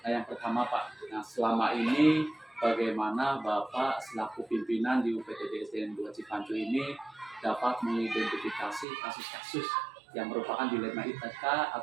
Yang pertama Pak, nah selama ini bagaimana Bapak selaku pimpinan di UPTD SDN 2 Cipacu ini dapat mengidentifikasi kasus-kasus yang merupakan dilema etika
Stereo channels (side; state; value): left; drops out; at 8.8 s